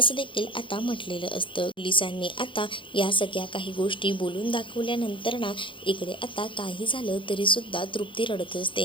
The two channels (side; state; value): right; late; 0.25 ms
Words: देखील आता म्हटलेलं असतं. पोलिसांनी आता या सगळ्या काही गोष्टी बोलून दाखवल्यानंतर ना इकडे आता काही झालं तरीसुद्धा तृप्ती रडत